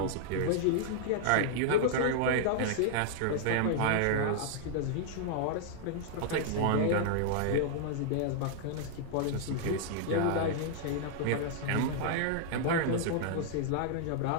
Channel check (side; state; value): both; different; correlation -0.01